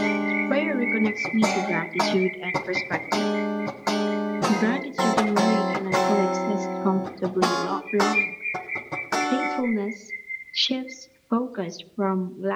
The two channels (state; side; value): identical; both; correlation 1.00